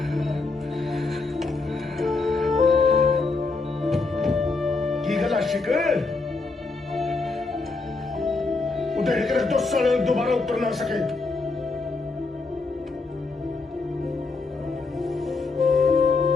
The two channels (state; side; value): quieter; right; 3.8 dB